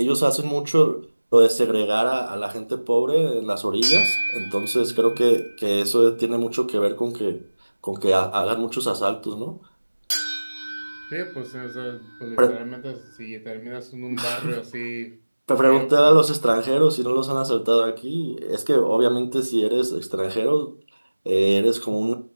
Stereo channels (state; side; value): inverted; both; correlation -1.00